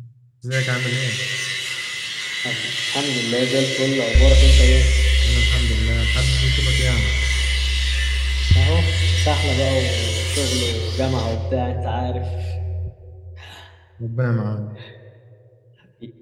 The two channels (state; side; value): identical; both; correlation 1.00